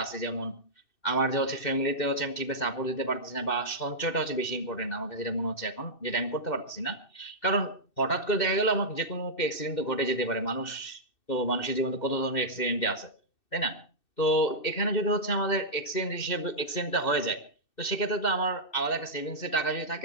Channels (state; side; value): late; right; 2.6 ms